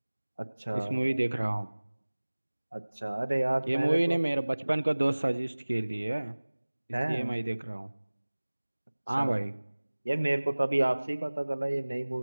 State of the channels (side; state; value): both; inverted; correlation -1.00